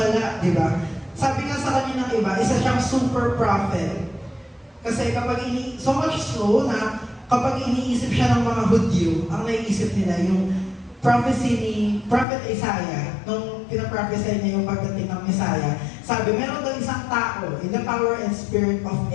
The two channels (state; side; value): drops out; right; at 12.2 s